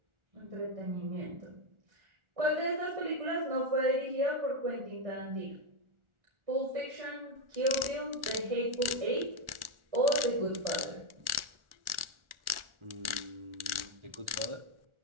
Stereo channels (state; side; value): late; left; 1.4 ms